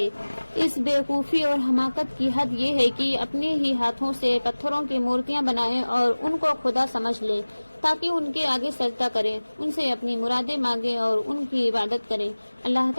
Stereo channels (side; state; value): both; inverted; correlation -1.00